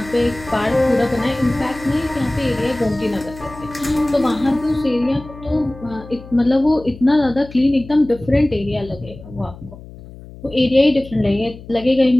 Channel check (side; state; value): left; noise; hum, 17 dB below the sound